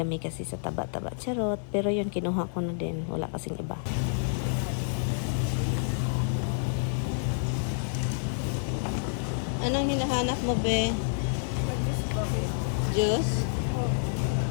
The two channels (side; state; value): right; silent; 59 dB below the other